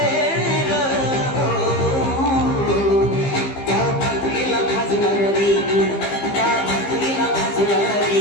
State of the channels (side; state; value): right; late; 15 ms